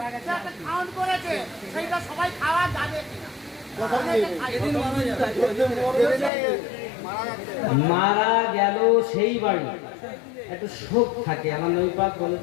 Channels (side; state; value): right; drops out; at 6.3 s